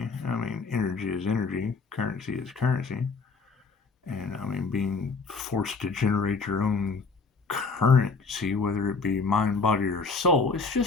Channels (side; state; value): right; quieter; 4.4 dB